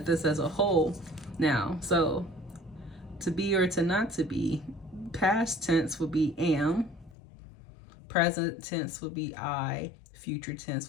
this as a whole now. So to be or to not to be, past tense would be am, present tense would be I, future tense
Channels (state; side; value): drops out; right; at 7.2 s